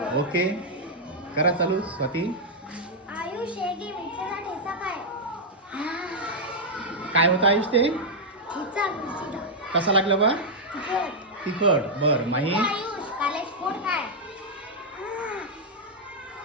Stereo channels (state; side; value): normal; both; correlation -0.04